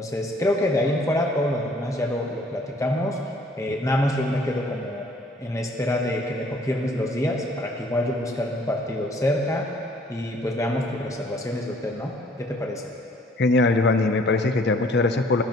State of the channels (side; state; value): both; normal; correlation 0.58